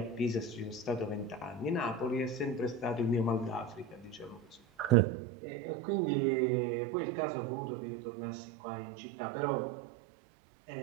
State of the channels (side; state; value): left; drops out; at 5.0 s